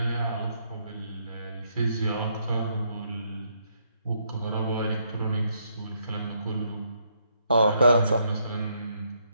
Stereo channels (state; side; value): inverted; both; correlation -0.74